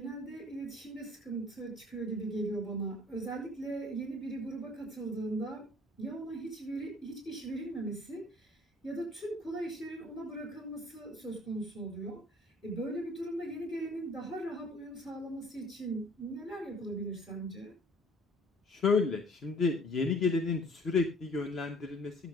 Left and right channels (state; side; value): normal; both; correlation 0.54